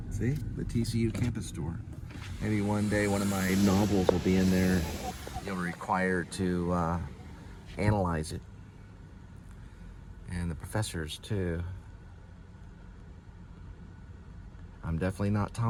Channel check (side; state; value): both; identical; correlation 1.00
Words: See, the TCU campus store. Maybe one day one of my novels will be in there. You'll be required to analyze it. And the professors too. I'm definitely not